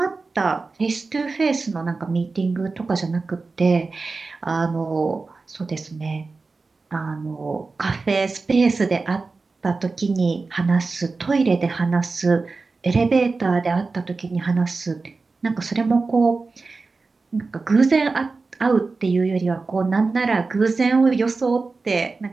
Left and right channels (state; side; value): quieter; left; 4.0 dB